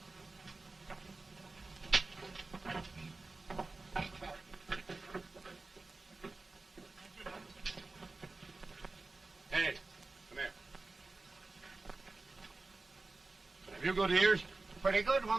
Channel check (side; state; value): left; quieter; 3.5 dB